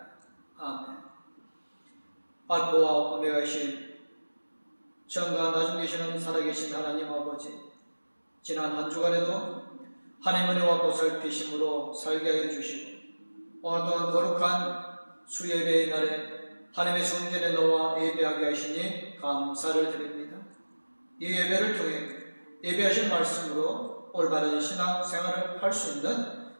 아멘. 알파와 오메가이신 전과 나중 계시는 살아계신 하나님 아버지, 지난 한 주간에도 하나님의 은혜와 보살피심으로 살게 하여 주시고 오늘 또한 거룩한 수예배의 날에 하나님의 성전에 나와 예배하게 하시니 감사를 드립니다. 이 예배를 통해 예배하신 말씀으로 올바른 신앙생활을 할 수 있는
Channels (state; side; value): inverted; both; correlation -1.00